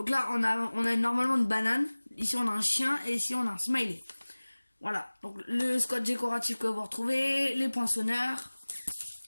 là, on a normalement une banane. Ici, on a un chien et ici, on a un smiley. Voilà, donc le scotch décoratif que vous retrouvez, les poinçonneurs.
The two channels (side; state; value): both; inverted; correlation -1.00